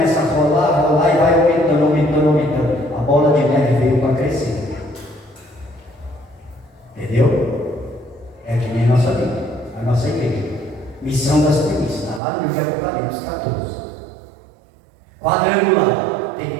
a rolar e vai aumentando. A bola de neve veio para crescer. Entendeu? É que nem a nossa Bíblia, a nossa igreja. Missão das primícias, está lá no livro de Apocalipse 14. Quadrangular. Tem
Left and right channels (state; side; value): drops out; left; at 12.2 s